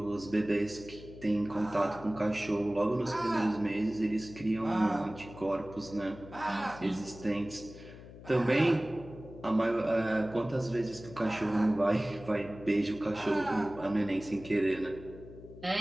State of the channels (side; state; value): left; noise; hum, 16 dB below the sound